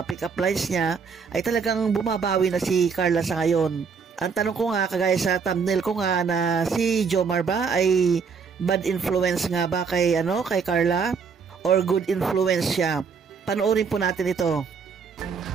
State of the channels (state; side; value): quieter; left; 5.8 dB